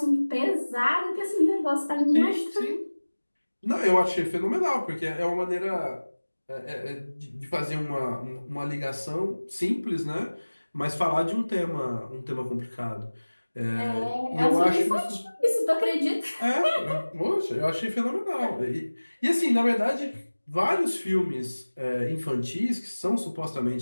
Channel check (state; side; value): inverted; both; correlation -1.00